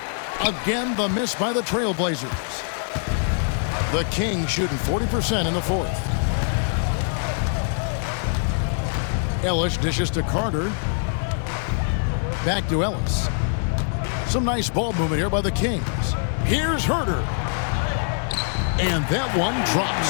Again, the miss by the TrailBlazers. The Kings shooting 40% in the fourth. Ellis dishes to Carter. Back to Ellis. Some nice ball movement here by the Kings. Here's Herter. And that one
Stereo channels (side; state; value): right; silent; digital silence